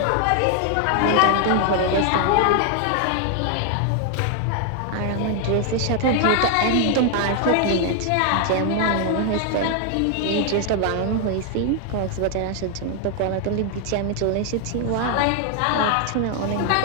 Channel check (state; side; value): different; both; correlation 0.00